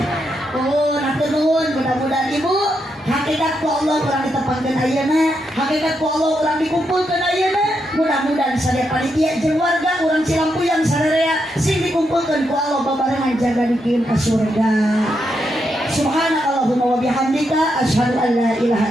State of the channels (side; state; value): both; normal; correlation 0.82